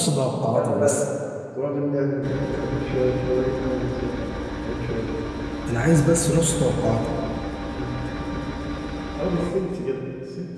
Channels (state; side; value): identical; both; correlation 1.00